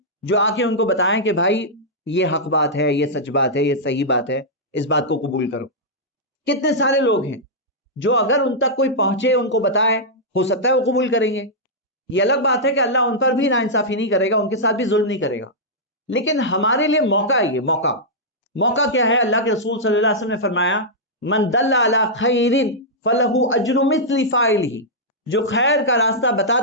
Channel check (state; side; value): normal; both; correlation -0.09